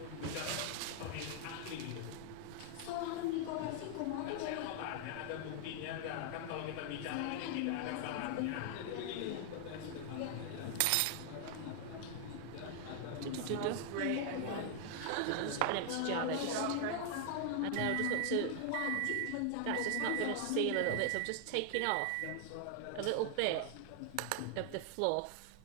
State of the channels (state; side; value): different; both; correlation 0.00